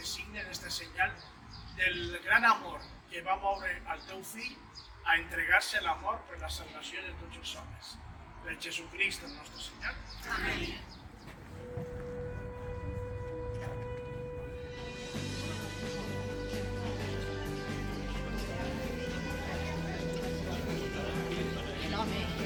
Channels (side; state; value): both; identical; correlation 1.00